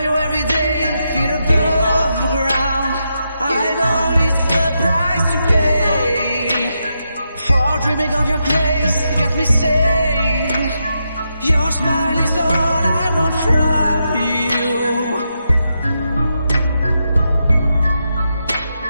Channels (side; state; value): both; inverted; correlation -0.84